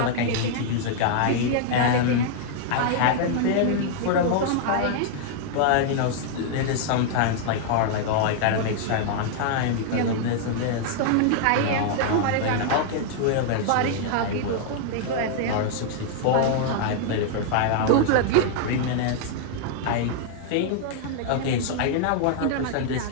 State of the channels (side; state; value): both; different; correlation -0.01